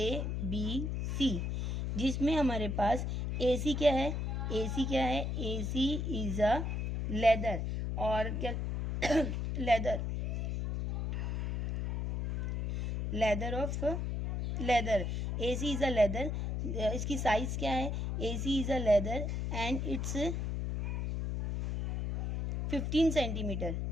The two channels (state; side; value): noise; left; hum, 1 dB below the sound